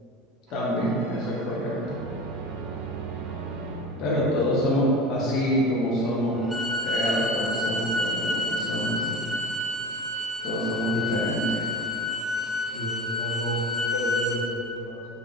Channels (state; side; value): normal; both; correlation 0.32